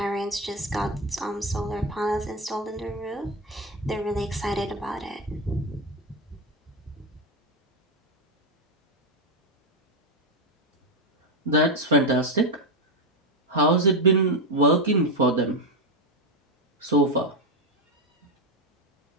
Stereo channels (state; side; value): normal; both; correlation 0.09